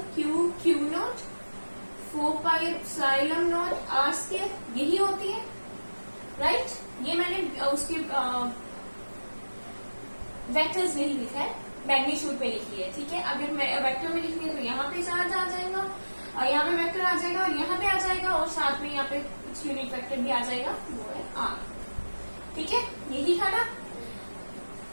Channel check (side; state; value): both; inverted; correlation -1.00